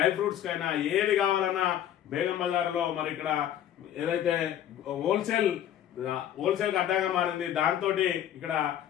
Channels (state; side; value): quieter; right; 10.9 dB